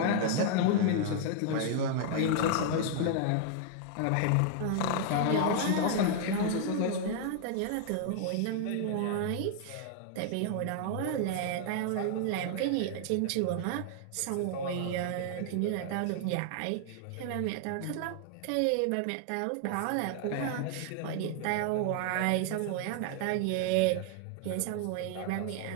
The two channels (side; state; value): both; different; correlation 0.00